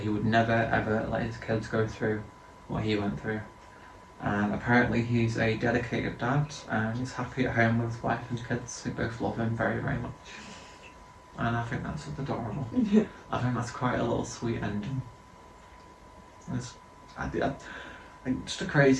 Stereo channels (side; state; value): both; identical; correlation 1.00